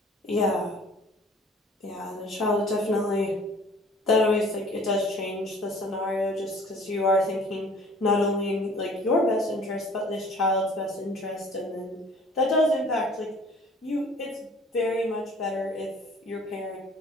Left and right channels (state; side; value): normal; both; correlation 0.51